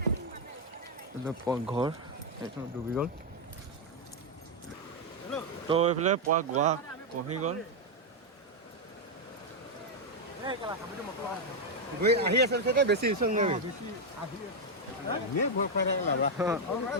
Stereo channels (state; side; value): normal; both; correlation 0.01